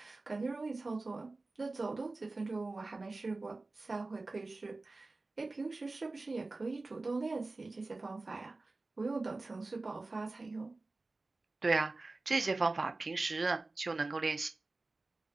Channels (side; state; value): left; quieter; 3.3 dB